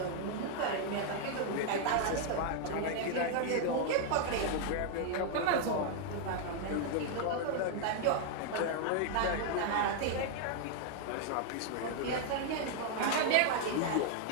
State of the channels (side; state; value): both; different; correlation 0.00